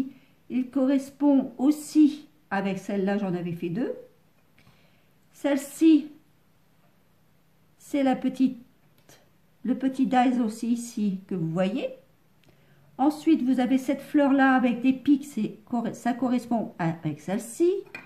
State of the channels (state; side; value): identical; both; correlation 1.00